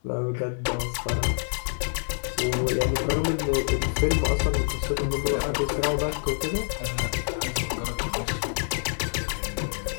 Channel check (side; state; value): right; silent; 59 dB below the other